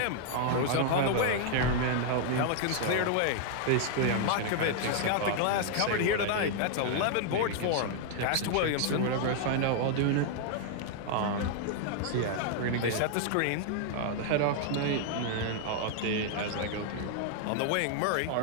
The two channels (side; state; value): both; different; correlation 0.00